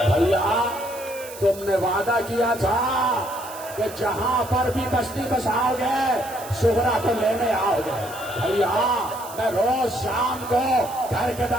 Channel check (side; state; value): right; noise; hiss, 15 dB below the sound